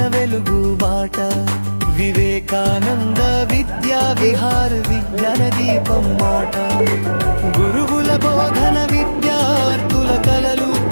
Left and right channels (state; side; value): inverted; both; correlation -1.00